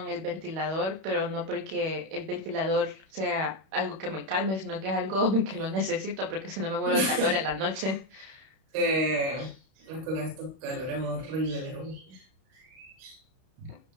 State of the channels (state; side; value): late; left; 31 ms